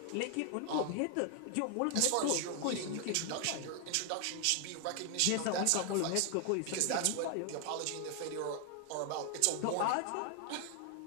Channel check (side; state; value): both; different; correlation 0.00